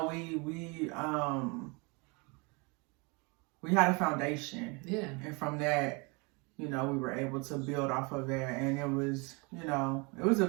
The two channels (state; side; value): quieter; left; 29.6 dB